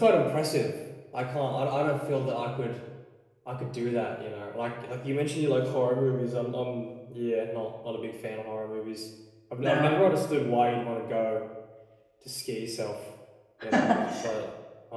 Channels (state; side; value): identical; both; correlation 1.00